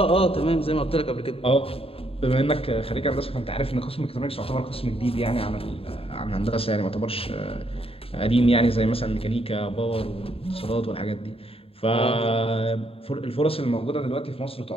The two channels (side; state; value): right; late; 0.27 ms